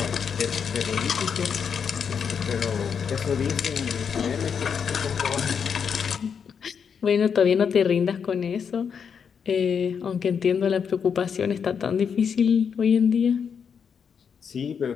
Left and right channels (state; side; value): quieter; right; 6.8 dB